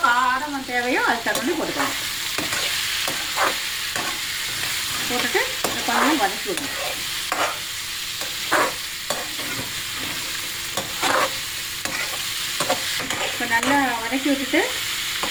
காரம் தேவையோ அது தகுந்த போட்டுக்கோங்க. போட்டுட்டு கொஞ்சம் வதக்கி விடணும். இப்போ நல்லா வதக்கி விட்டுட்டு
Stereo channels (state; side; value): noise; left; rumble, 19 dB below the sound